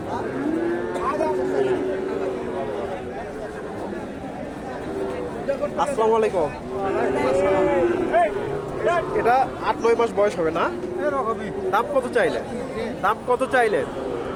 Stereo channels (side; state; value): both; identical; correlation 1.00